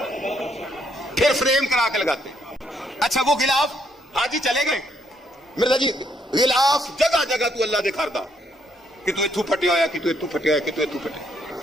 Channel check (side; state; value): both; normal; correlation 0.72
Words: پھر فریم کرا کے لگاتے ہیں. اچھا وہ غلاف حاجی چلے گئے مرزا جی, غلاف جگہ جگہ تو اللہ دکھاردا کہ تو اتھو پھٹیا ہوا, کہ تو اتھو پھٹیا ہوا, کہ تو اتھو پھٹیا.